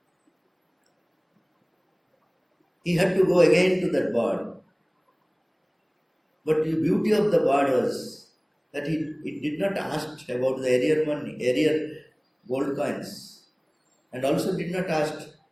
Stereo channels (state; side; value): identical; both; correlation 1.00